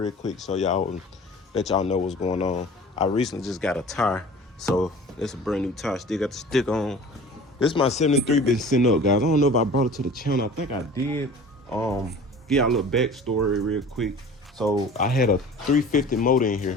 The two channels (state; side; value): normal; both; correlation 0.43